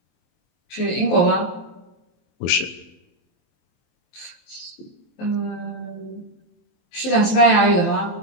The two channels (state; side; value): late; right; 23 ms